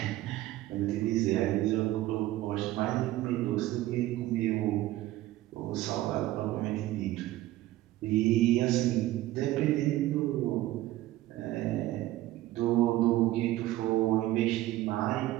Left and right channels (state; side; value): quieter; left; 15.8 dB